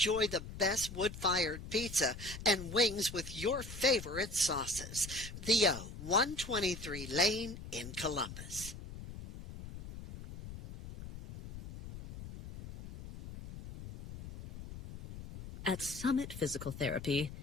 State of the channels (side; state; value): left; noise; rumble, 11 dB below the sound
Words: the best wood-fired pizza and wings with your favorite sauces. The O, 123 Lane in Columbus. At Summit Physical Therapy,